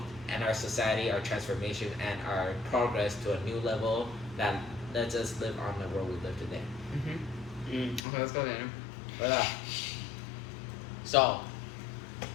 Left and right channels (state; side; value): drops out; right; at 8.0 s